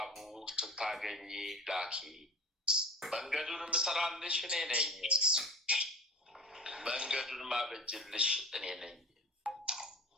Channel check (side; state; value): both; normal; correlation 0.37